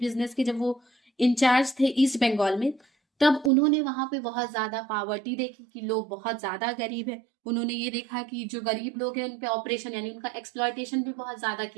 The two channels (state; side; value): drops out; left; at 3.5 s